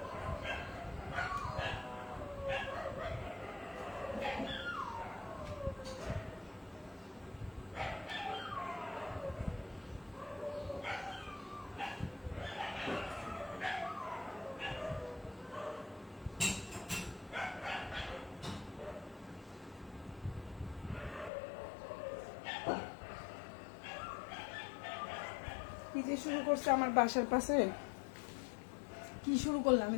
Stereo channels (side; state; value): right; drops out; at 21.3 s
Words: কি যে শুরু করছে আমার বাসার পাশে, কি শুরু করলাম আমি